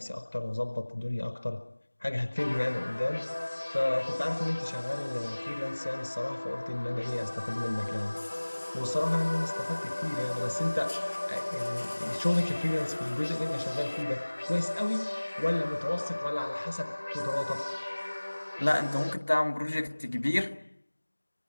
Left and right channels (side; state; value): both; inverted; correlation -1.00